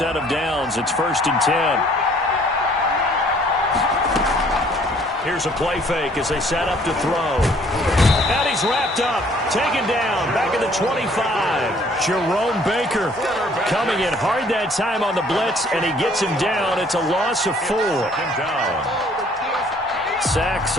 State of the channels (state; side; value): normal; both; correlation 0.59